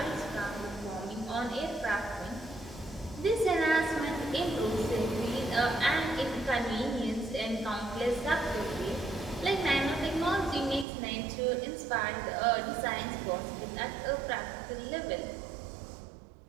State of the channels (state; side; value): drops out; left; at 10.9 s